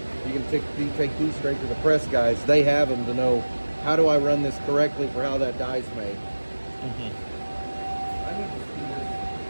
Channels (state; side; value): inverted; both; correlation -1.00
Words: you can take these straight to the press guys. They have them to know, how do I run this correctly for how that die's made. I need to see this